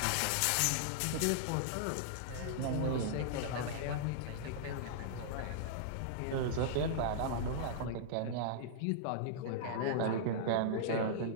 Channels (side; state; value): both; different; correlation -0.02